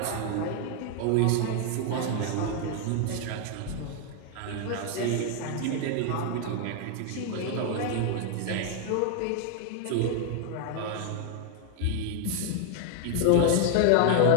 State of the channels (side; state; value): both; different; correlation 0.00